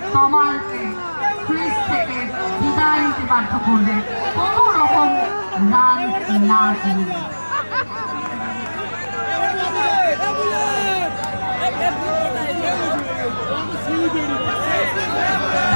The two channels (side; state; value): both; inverted; correlation -1.00